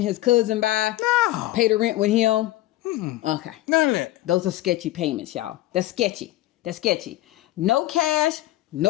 his cousin by? No. Pay the rent with him? Okay. None of that. Those are sketchy payments, y'all. That's sketchy. No cash,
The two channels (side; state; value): right; quieter; 16.2 dB